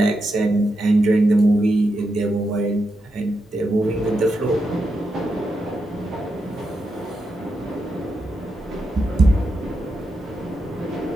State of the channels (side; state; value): both; normal; correlation 0.85